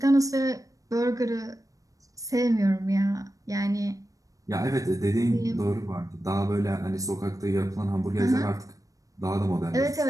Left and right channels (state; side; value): late; left; 0.16 ms